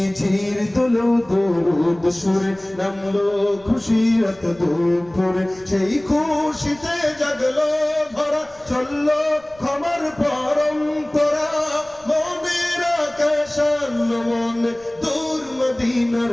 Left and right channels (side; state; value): left; noise; rumble, 27 dB below the sound